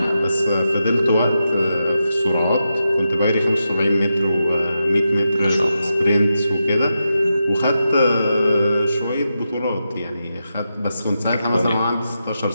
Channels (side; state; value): both; inverted; correlation -0.87